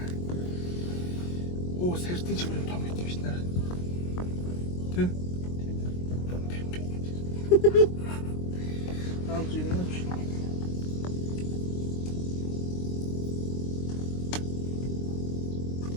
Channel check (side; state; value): right; late; 22 ms